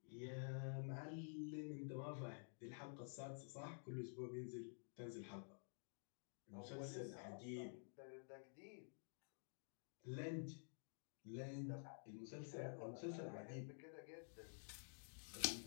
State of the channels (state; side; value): silent; right; digital silence